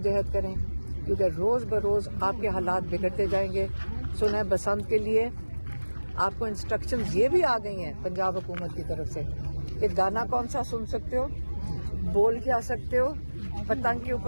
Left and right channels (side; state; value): both; inverted; correlation -1.00